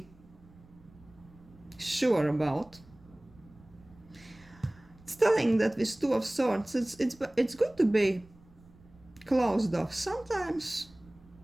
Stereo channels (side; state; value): right; noise; rumble, 25 dB below the sound